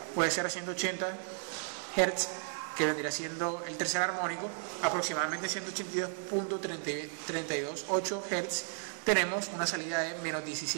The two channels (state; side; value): silent; left; 55 dB below the other